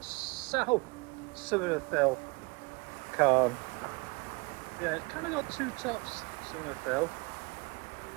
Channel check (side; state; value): left; quieter; 27.9 dB